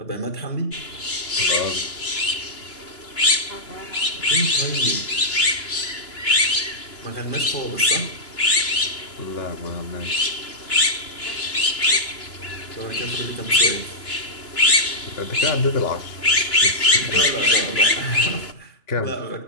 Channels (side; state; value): right; late; 2.9 ms